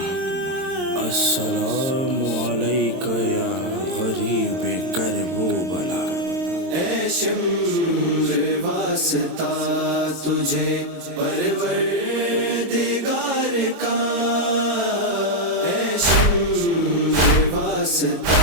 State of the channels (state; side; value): late; left; 22 ms